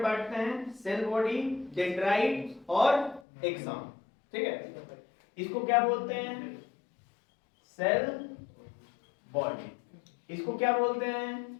बांटते हैं, सेल बॉडी, डेंड्राइट और एक्सॉन, ठीक है। इसको क्या बोलते हैं? Cell body. इसको क्या बोलते हैं?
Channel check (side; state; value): right; drops out; at 3.2 s